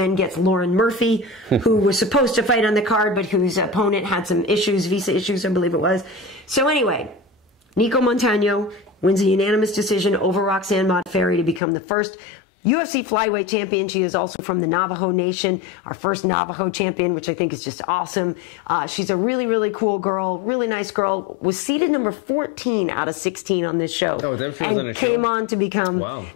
gets Lauren Murphy, who was supposed to fight on the card, but whose opponent had some issues, visa issues, I believe it was. So anyway, Nicco Montano wins a unanimous decision over Roxanne Modafferi to become the first UFC flyweight champion. She is also from the Navajo Nation, our first Navajo champion, which I think is just awesome. She's a really, really cool girl, really nice girl. Was seeded number 14 out of 16 on this show. Oh, that she was on the show? Came on to become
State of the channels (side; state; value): right; drops out; at 11.6 s